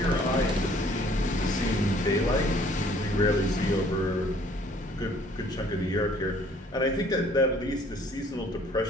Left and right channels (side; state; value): both; normal; correlation 0.58